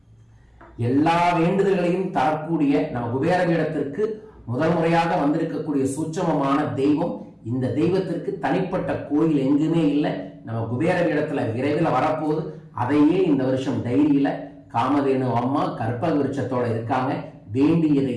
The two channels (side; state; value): both; identical; correlation 1.00